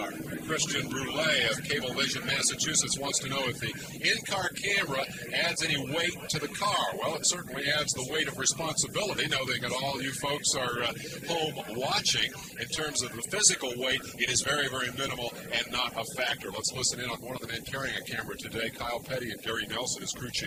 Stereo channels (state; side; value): identical; both; correlation 1.00